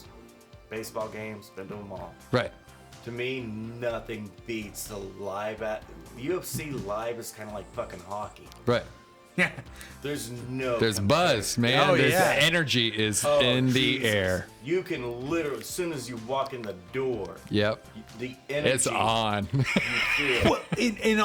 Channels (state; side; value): identical; both; correlation 1.00